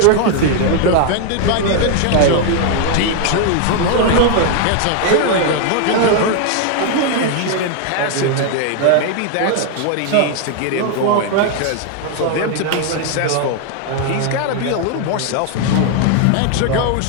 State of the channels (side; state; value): both; different; correlation 0.00